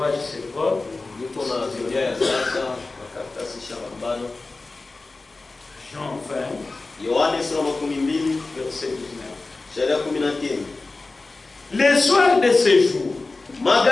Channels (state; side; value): quieter; right; 3.5 dB